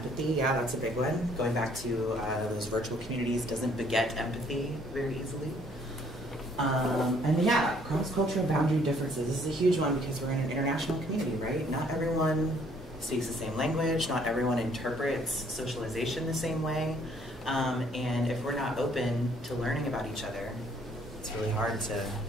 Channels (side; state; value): both; normal; correlation 0.62